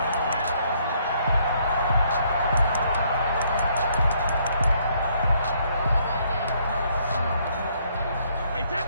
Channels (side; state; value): both; inverted; correlation -0.68